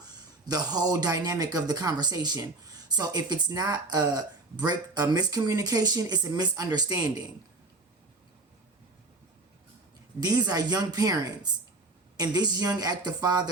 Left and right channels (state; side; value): quieter; left; 3.3 dB